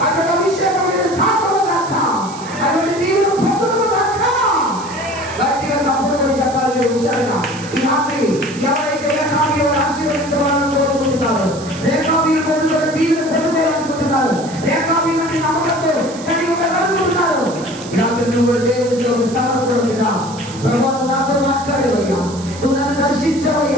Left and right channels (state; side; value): noise; right; hiss, 16 dB below the sound